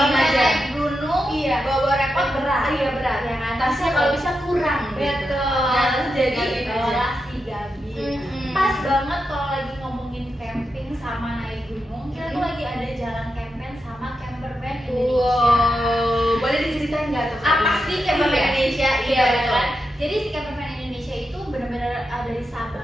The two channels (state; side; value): normal; both; correlation 0.87